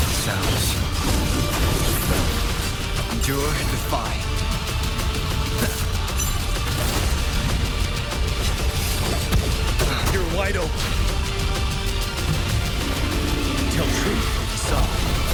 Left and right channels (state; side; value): identical; both; correlation 1.00